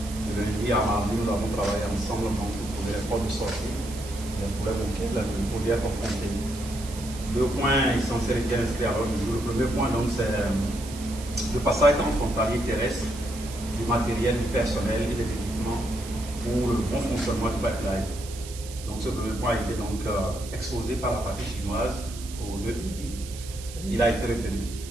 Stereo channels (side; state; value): right; noise; hiss, 14 dB below the sound